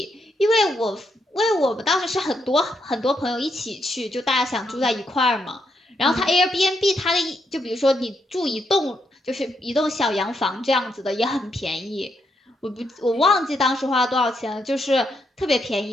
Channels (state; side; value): normal; both; correlation 0.79